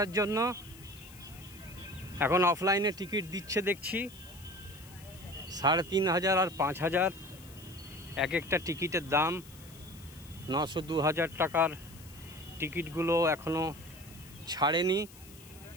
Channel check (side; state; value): left; noise; hiss, 21 dB below the sound